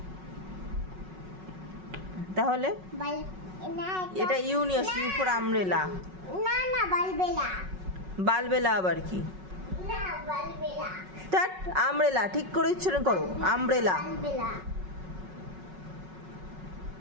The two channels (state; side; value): late; left; 5.4 ms